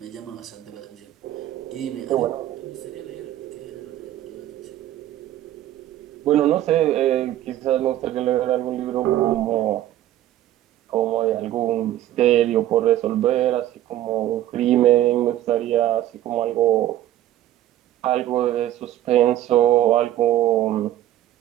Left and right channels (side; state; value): left; quieter; 13.3 dB